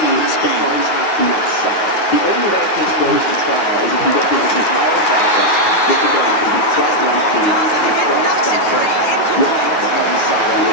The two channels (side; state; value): right; late; 9.7 ms